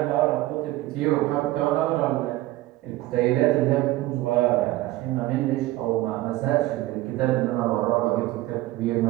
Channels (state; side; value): quieter; left; 17.3 dB